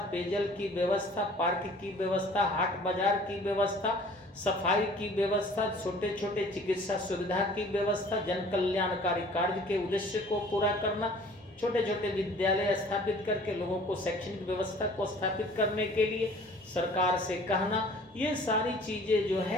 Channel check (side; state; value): both; normal; correlation 0.50